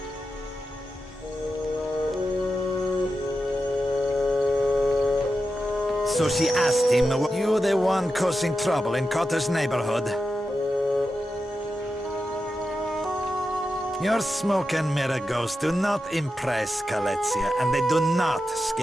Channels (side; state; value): both; normal; correlation 0.90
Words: So she asked him, "You the one causing trouble in Cotter's neighborhood?" Your smoke and mirror ghosts do not impress Kaletzia, and they do not